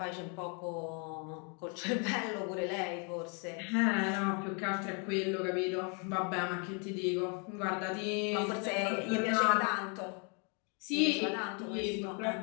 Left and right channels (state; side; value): quieter; right; 35.7 dB